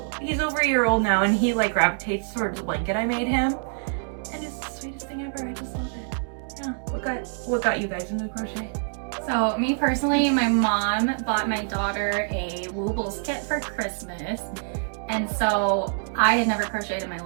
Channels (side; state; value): left; silent; digital silence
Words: He's over a year old now and he like gravitates towards the blanket I made him. And it's the sweetest thing ever. I just love it. Yeah. What got you guys into crochet? So me personally, my mom bought my daughter a Woobles kit for Christmas. And so I had never crocheted in my